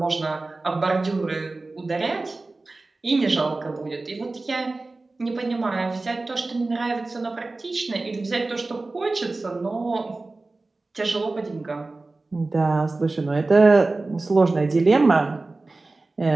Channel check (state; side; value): quieter; left; 3.3 dB